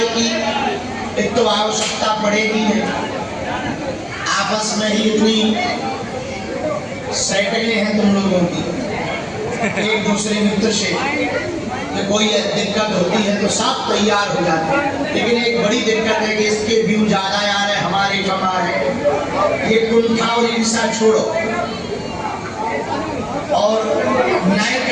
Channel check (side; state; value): both; identical; correlation 1.00